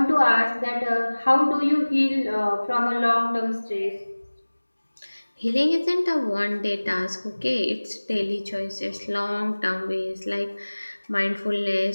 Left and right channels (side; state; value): both; inverted; correlation -1.00